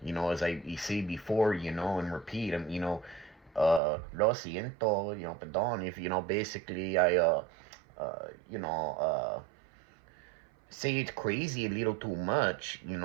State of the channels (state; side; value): drops out; left; at 3.8 s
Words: as I say before, and repeat, lo siento, perdón, if, basically I, you know, say it's crazy a little too much,